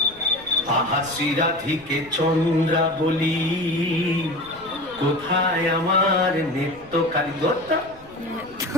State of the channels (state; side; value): noise; left; rumble, 24 dB below the sound